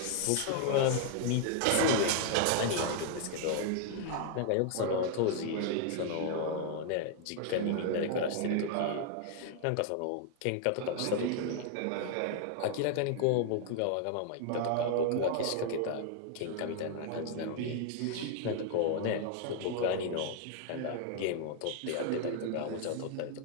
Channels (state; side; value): different; both; correlation 0.00